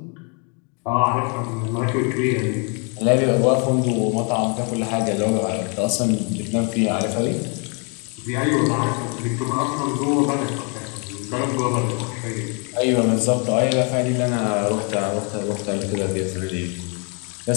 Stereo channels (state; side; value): quieter; right; 36.7 dB